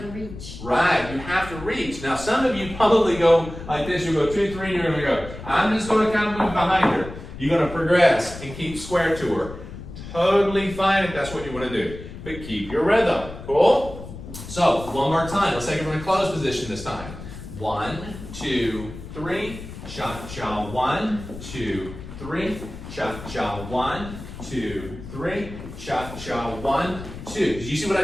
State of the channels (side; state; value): left; noise; rumble, 12 dB below the sound